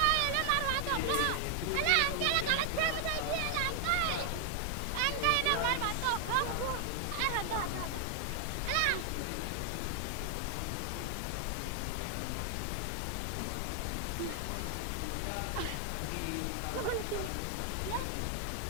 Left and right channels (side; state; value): both; different; correlation 0.00